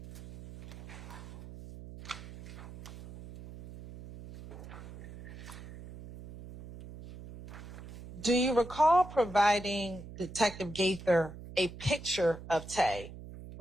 Do you recall providing Detective Gaither a picture of Tay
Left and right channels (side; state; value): right; noise; hum, 13 dB below the sound